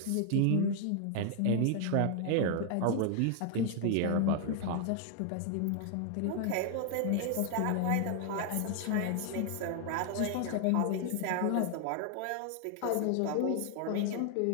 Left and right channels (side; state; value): both; different; correlation 0.00